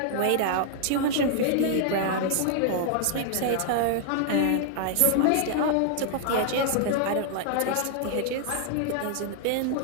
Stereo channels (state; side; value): different; both; correlation -0.01